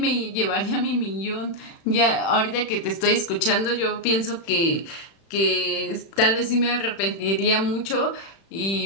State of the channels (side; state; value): right; late; 36 ms